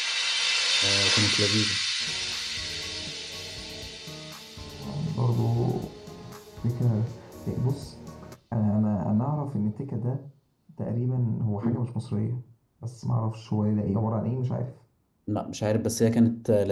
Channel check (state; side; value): identical; both; correlation 1.00